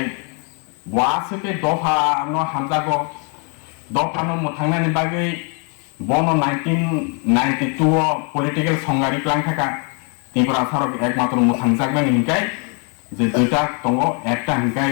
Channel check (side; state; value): right; quieter; 37.5 dB